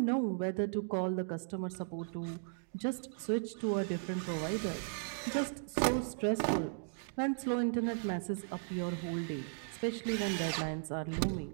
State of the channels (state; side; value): silent; left; digital silence